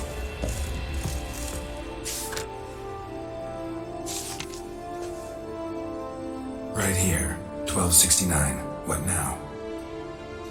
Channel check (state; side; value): identical; both; correlation 1.00